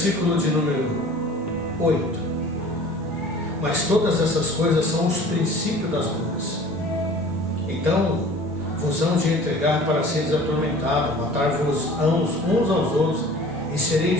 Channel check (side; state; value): both; normal; correlation 0.45